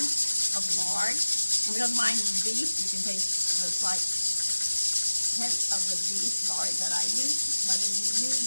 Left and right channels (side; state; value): both; inverted; correlation -1.00